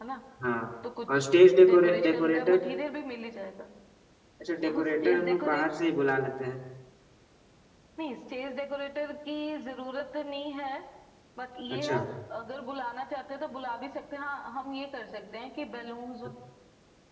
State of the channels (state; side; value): identical; both; correlation 1.00